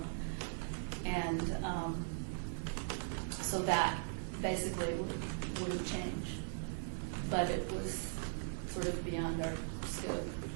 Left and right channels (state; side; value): silent; left; 51 dB below the other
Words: And so that basically wouldn't change. But it was sort of beyond our scope.